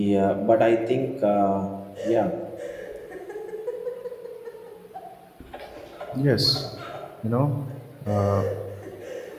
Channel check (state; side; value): identical; both; correlation 1.00